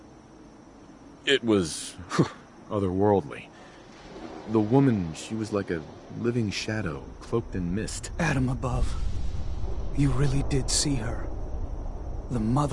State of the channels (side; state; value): both; identical; correlation 1.00